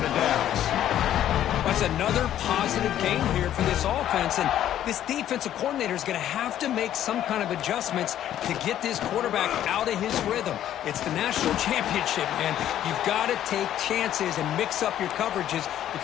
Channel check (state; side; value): quieter; right; 11.5 dB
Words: of downs. That's another positive gain here for this offense, and this defensive coordinator is going to have to make some kind of adjustments to get this quarterback out of his rhythm. It's the national championship, man. You've got to take chances and mix up your coverages